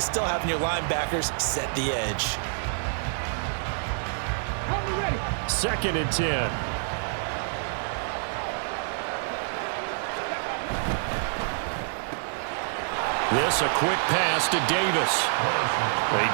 still having your linebackers set the edge. 2nd and 10. This a quick pass to Davis. They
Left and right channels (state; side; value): silent; left; digital silence